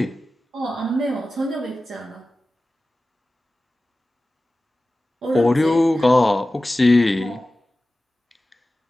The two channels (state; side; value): normal; both; correlation 0.96